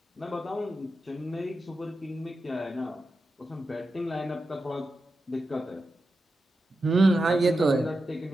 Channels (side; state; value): both; normal; correlation 0.90